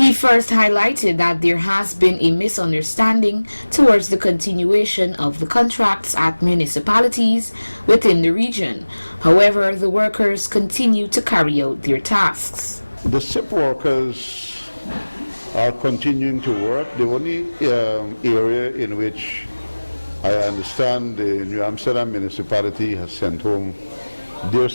first highlighted that there has been a misunderstanding towards the continuation of the contracts at municipalities within the region. However, the workers continue to carry out their tasks. The CEP workers are continuing to work. The only area in which I understand the New Amsterdam municipality has sent home their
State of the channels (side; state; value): both; inverted; correlation -1.00